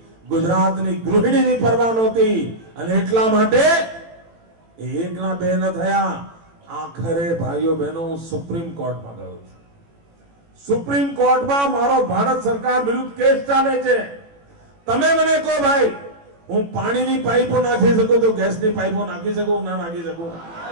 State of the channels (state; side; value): late; left; 18 ms